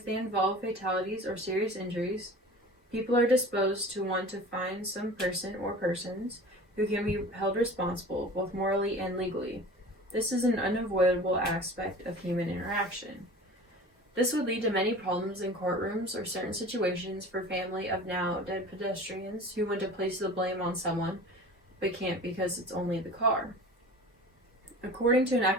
they involve fatalities or serious injuries, people are disposed to want to find some person or persons who can be held responsible, both morally and legally. This is an unavoidable aspect of human interaction. This would lead to many problems in courtrooms or certain situations for family of now dead pedestrians who want to place the blame on someone, but can't because it's only the car. According to an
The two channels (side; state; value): both; normal; correlation 0.40